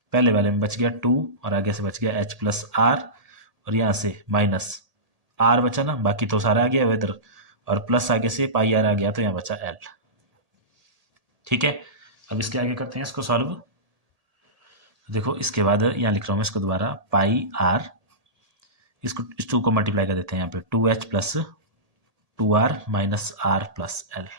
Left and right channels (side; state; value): left; late; 1.8 ms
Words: पहले वाले में बच गया 2, और आगे से बच गया एच प्लस आर, और यहाँ से माइनस आर बचा ना, बाकी तो सारा आ गया इधर, और प्लस आगे से पाई आर आ गया, तो यहाँ बचा एल। ठीक है, अब इसके आगे करते हैं इसको सॉल्व। देखो इसके बाद यहाँ लिख रहा हूँ मैं इसको दोबारा, पाई आर, इसको इस 2 को मल्टीप्लाई कर देते हैं यहाँ पे, 2h plus 2r minus R plus L.